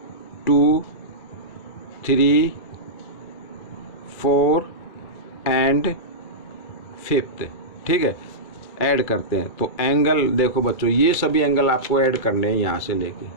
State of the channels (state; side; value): late; right; 2.3 ms